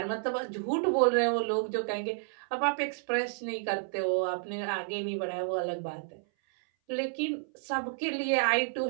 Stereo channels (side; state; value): left; silent; 57 dB below the other